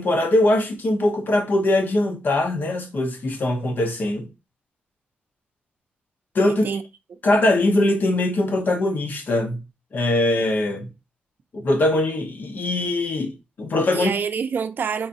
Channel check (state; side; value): normal; both; correlation 0.77